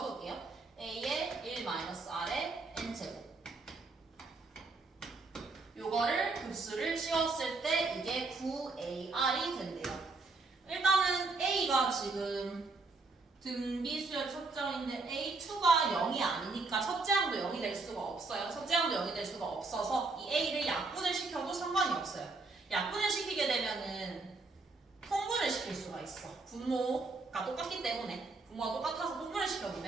A의 1-R의 N제곱 요거를 급수를 씌웠을 때 이게 9AR이 된대요. 일단은 A가 지금 등비수열 첫째항인데 A2가 0이 아니니까 첫째 항도 0이 될 수가 없어요. 첫째 항도 0이 될 수가 없어서 이 A를 약분을 시켜도 상관이 없어요. 약분을 시키게 되면은 통분을 시킬 수가 있어. 분모가 똑같기 때문에 분모가 똑같아서 통분을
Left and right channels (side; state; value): left; quieter; 3.7 dB